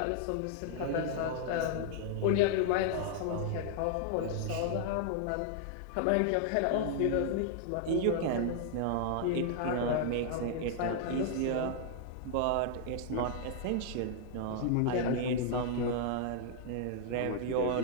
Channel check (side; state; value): both; different; correlation -0.01